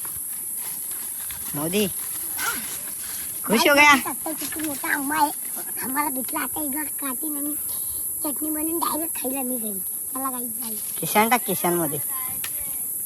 मोदी खुश हो गया. किती मोठा आंबा आहे आम्हाला भेटला. आता एक काठी आणि चटणी बनवून डायरेक्ट खायला मी घरी. मला काही जाईल किशान टाक, किशान मध्ये.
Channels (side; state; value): both; identical; correlation 1.00